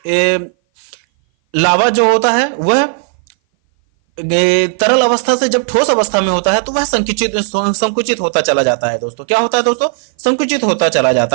लावा जो होता है वह तरल अवस्था से जब ठोस अवस्था में होता है तो वह संकुचित होता चला जाता है। दोस्तों क्या होता है? दोस्तों संकुचित होता चला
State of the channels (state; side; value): silent; left; 58 dB below the other